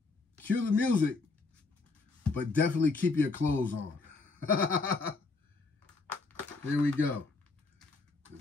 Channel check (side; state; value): right; quieter; 3.8 dB